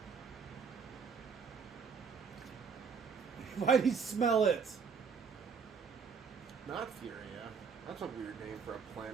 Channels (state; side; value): quieter; left; 5.9 dB